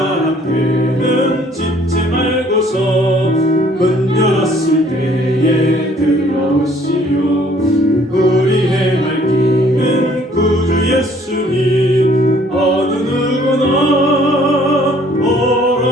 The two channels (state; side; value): normal; both; correlation 0.59